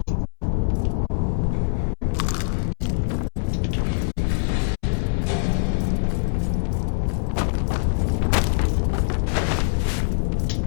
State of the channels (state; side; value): silent; right; 63 dB below the other